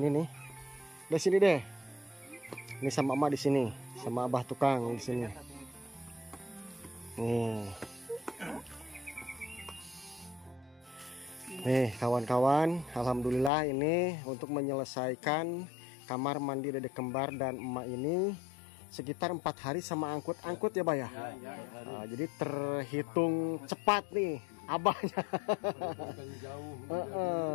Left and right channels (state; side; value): drops out; right; at 13.5 s